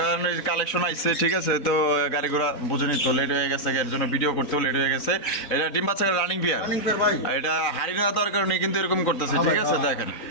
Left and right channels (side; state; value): right; late; 3.9 ms